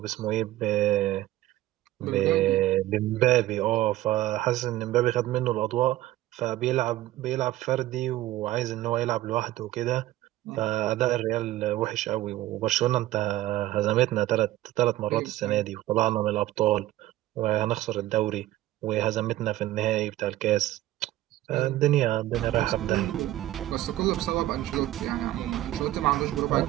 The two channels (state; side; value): quieter; left; 15.4 dB